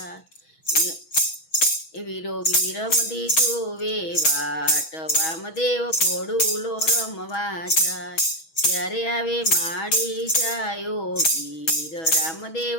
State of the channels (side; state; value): right; late; 6.2 ms